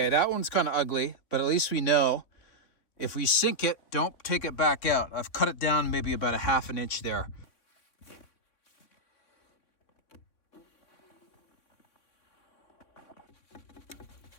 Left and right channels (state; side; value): late; right; 3.5 ms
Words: that one's kind of ugly, but at least we know if we sink it, don't take it back out. I've cut it down maybe about 1/2 inch there.